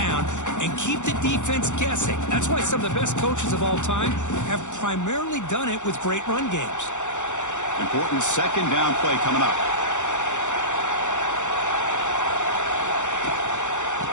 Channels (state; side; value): late; right; 0.85 ms